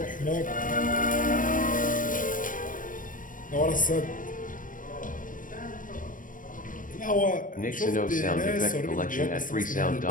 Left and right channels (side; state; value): right; late; 0.39 ms